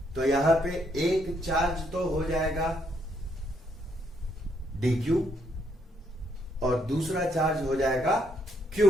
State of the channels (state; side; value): normal; both; correlation 0.73